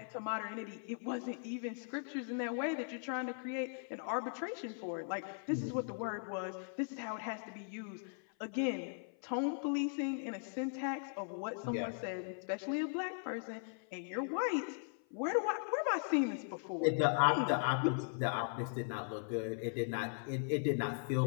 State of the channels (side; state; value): right; silent; 52 dB below the other